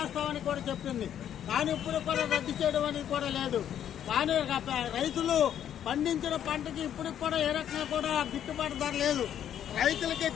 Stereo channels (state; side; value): quieter; right; 10.0 dB